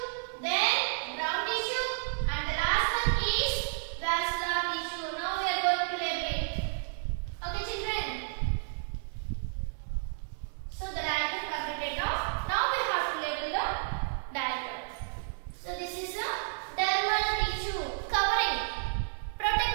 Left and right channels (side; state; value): left; silent; digital silence